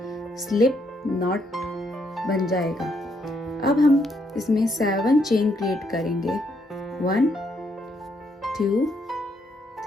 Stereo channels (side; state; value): both; normal; correlation 0.74